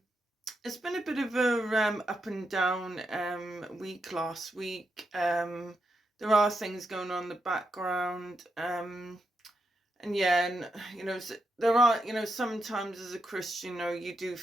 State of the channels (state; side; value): normal; both; correlation 0.83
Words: it's been a bit of a up and down week last week. There are things going on in the background. And yeah, and there are, sometimes as a Christian, you do